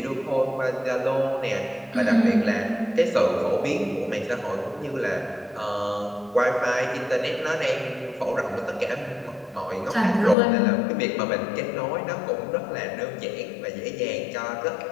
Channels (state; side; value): drops out; right; at 10.4 s